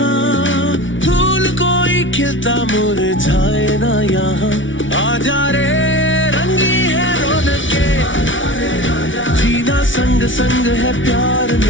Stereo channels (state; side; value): late; right; 0.56 ms